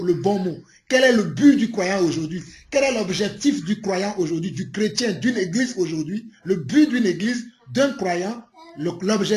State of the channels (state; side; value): identical; both; correlation 1.00